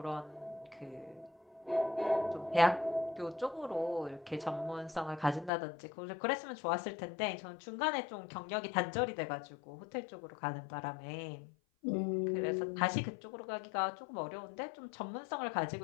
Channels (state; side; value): drops out; right; at 5.5 s